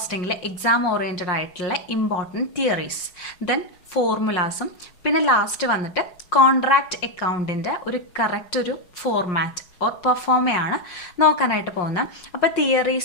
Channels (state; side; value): late; right; 5.6 ms